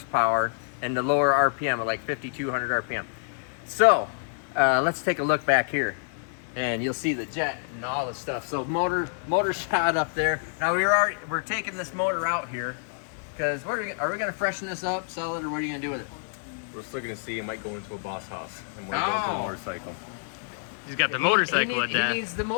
and the lower RPM of like 5,200 RPM. So let's take a look back here, and you'll see the jet and all the stuff. So motor shot up there. Now we're taking this motor out here because are we going to freshen this up, sell it, or what are you going to do with it? We're still going to see. It might go into a boss house and might go into a motorcycle. He's got the motorcycle at that. He needs the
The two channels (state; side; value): silent; right; 60 dB below the other